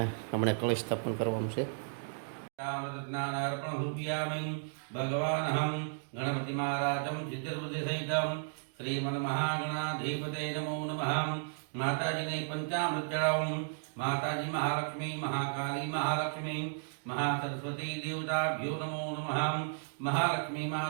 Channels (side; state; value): left; silent; digital silence